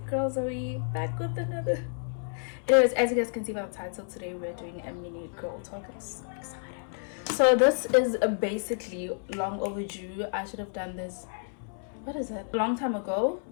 Zoe back with another. Anyways, as you guys can see by the title, today we're doing a mini girl talk. I'm so excited. So this is basically long overdue. I should have done this, what is it, a long time ago.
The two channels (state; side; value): silent; right; 58 dB below the other